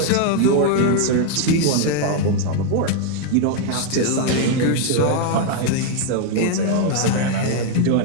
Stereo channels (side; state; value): both; different; correlation 0.00